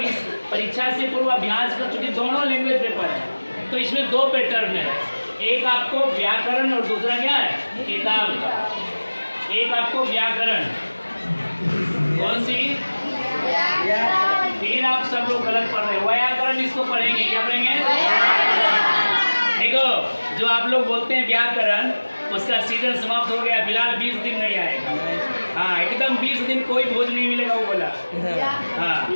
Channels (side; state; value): both; inverted; correlation -1.00